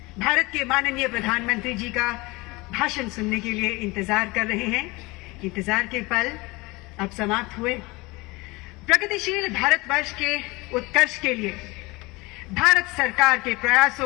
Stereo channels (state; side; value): quieter; right; 23.6 dB